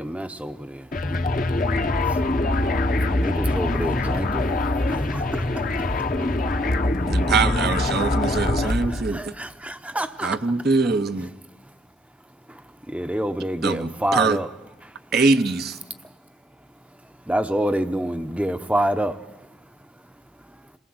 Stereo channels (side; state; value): both; normal; correlation 0.69